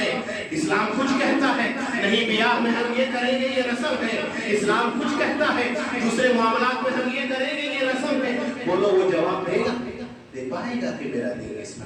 اسلام کچھ کہتا ہے نہیں بیاہ میں ہم یہ کریں گے یہ رسم ہے، اسلام کچھ کہتا ہے دوسرے معاملات میں ہم یہ کریں گے یہ رسم ہے۔ بولو وہ جواب دے گا؟ دے پائے گا کہ میرا دین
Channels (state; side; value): identical; both; correlation 1.00